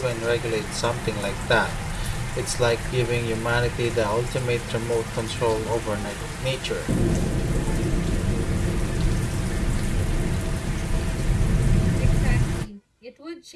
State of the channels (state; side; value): identical; both; correlation 1.00